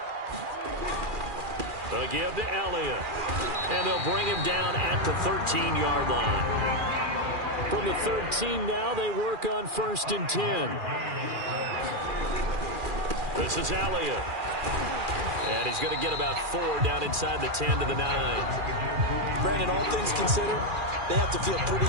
They'll give to Elliott. And they'll bring him down at the 13-yard line. From the 13 now, they work on 1st and 10. This is Elliott. And he's going to get about 4 down inside the 10 to the 9. Brandon, all things considered, they have to feel pretty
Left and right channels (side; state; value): left; late; 2.4 ms